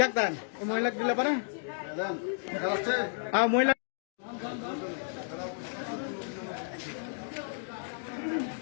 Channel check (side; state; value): right; silent; digital silence